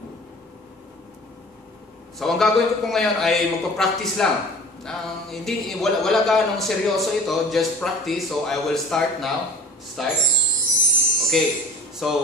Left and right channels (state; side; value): normal; both; correlation 0.43